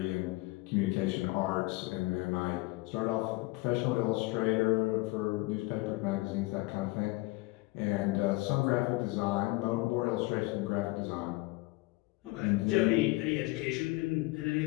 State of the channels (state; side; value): quieter; right; 22.5 dB